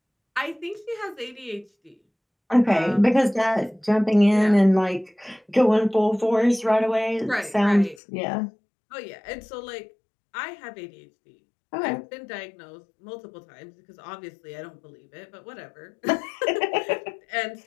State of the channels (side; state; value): right; drops out; at 8.0 s